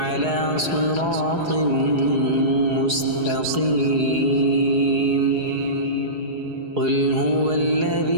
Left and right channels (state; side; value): late; left; 4.8 ms